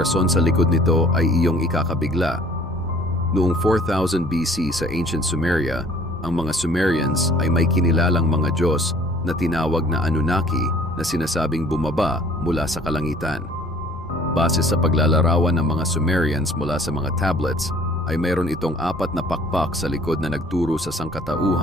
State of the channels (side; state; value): both; normal; correlation 0.53